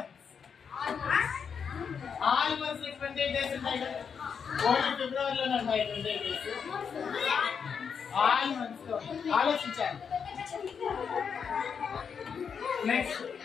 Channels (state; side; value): quieter; right; 6.6 dB